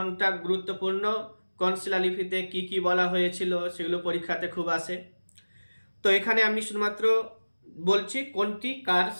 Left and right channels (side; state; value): both; inverted; correlation -1.00